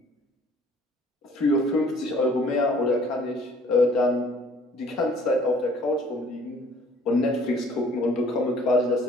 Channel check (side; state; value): both; normal; correlation 0.55